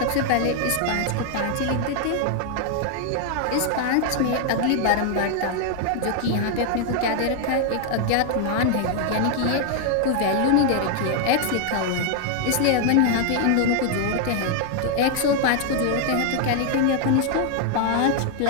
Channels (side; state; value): both; different; correlation 0.00